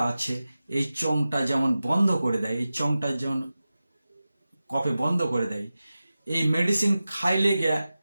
আছে, এই চংটা যেমন বন্ধ করে দেয়, এই চংটা যেমন কফে বন্ধ করে দেয়, এই মেডিসিন খাইলে গিয়া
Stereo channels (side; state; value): both; inverted; correlation -0.94